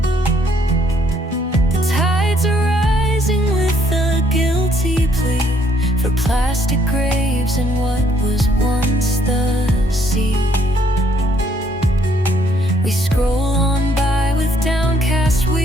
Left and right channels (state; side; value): normal; both; correlation 0.67